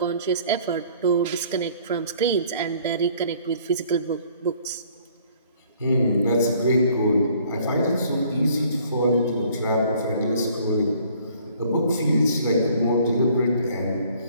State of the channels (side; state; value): both; inverted; correlation -0.58